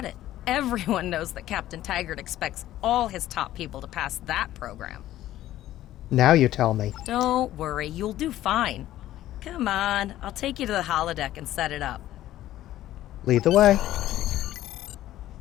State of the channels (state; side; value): quieter; right; 13.8 dB